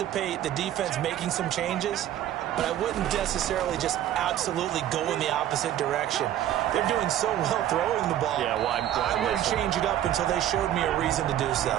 the defense making some changes, but I wouldn't necessarily just absolutely go in the opposite direction. They're doing so well throwing the ball. Yeah, well, I wouldn't change it up until they showed me a reason to do so.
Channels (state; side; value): quieter; left; 11.9 dB